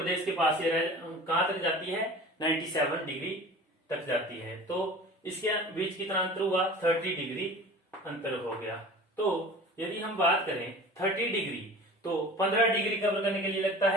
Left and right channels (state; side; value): normal; both; correlation 0.40